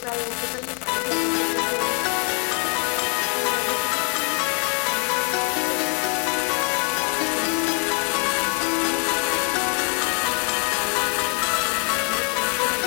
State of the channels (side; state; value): right; quieter; 37.8 dB